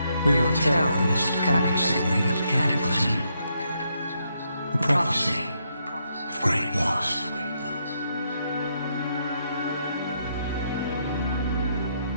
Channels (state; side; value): inverted; both; correlation -0.78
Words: We will tell the most cunning sibling of the Cataclysm. A prophecy of great loss.